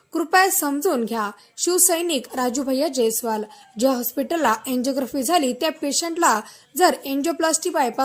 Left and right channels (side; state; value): both; identical; correlation 1.00